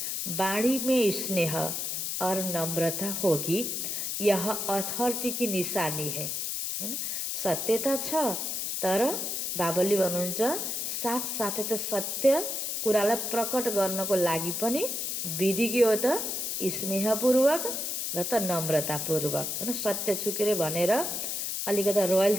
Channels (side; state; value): left; noise; hiss, 2 dB below the sound